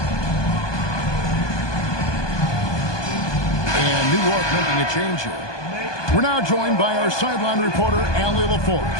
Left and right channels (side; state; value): right; late; 1.2 ms